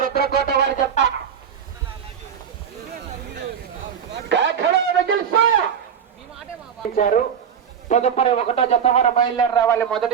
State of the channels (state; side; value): quieter; left; 7.8 dB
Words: రుద్రకోట వారి చెత్త తదుపరి 1వ జత వారు బయలుదేరి రావాలి.